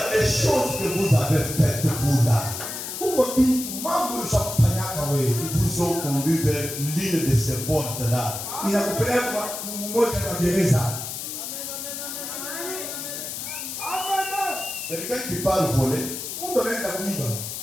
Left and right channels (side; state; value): left; noise; hiss, 6 dB below the sound